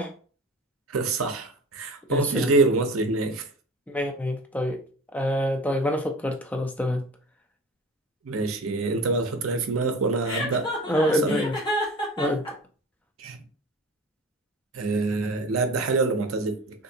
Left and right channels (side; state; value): both; normal; correlation 0.36